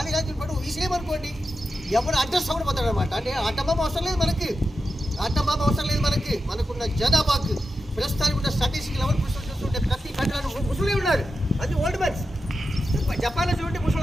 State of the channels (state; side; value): normal; both; correlation 0.90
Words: రాజు పడు విషయమనుకోండి, ఎవరు అడ్రస్ అవ్వడం పోతాడు అనమాట. అంటే ఆటంబాబు అవసరం లేదు మనకి, ఆటంబాబు అవసరం లేదు మనకి. మనకున్న జనాభాకు ప్రస్తుతానికి ఉన్న స్టాటిస్టిక్ లెవెల్ చూస్తుంటే ప్రతి కంట్రీలో ముసలి ఉన్నారు. అది ఓల్డ్ మ్యాన్స్. జపాన్లో చూడండి ముసలు